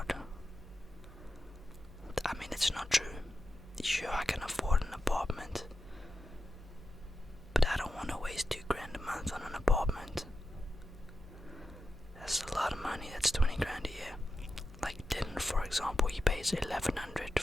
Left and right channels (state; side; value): normal; both; correlation 0.90